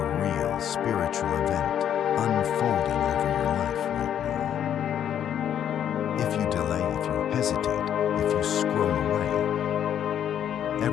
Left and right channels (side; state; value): right; quieter; 9.7 dB